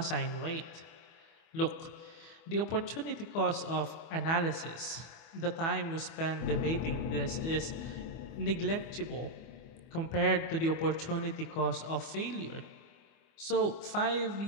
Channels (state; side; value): late; right; 24 ms